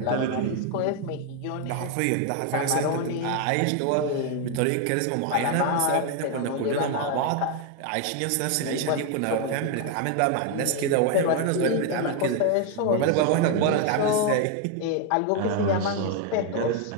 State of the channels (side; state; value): both; different; correlation 0.01